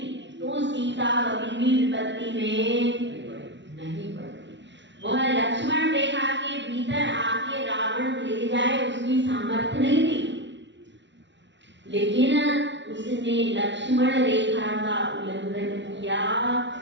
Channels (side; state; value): left; late; 0.52 ms